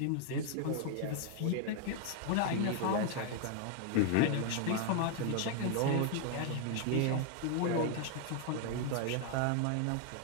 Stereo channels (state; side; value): different; both; correlation 0.00